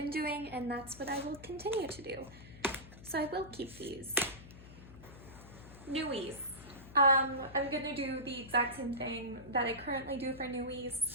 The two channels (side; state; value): left; noise; hum, 17 dB below the sound